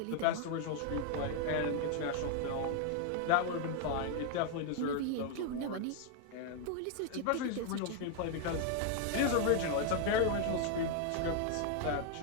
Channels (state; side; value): different; both; correlation 0.00